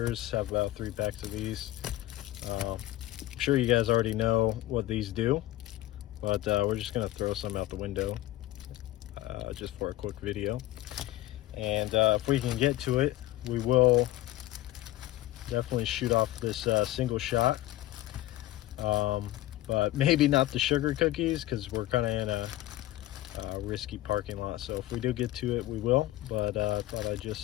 Have about 3 packs of these. I'm sure you guys already know what these do, but we're just gonna throw some out the window just for a quick video. And if we can get to it, we will definitely shoot off this single shot. But maybe not the sugar cookies because we're kind of in a risky parking lot. So if we do get to it, we will. But I thought I'd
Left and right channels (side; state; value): right; quieter; 16.0 dB